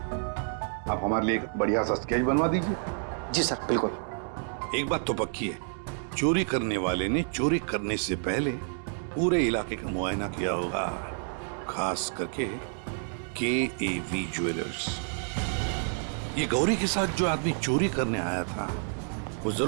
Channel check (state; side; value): silent; left; 58 dB below the other